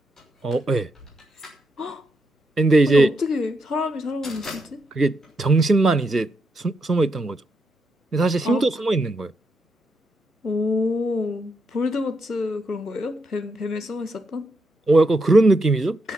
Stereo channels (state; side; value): normal; both; correlation 0.81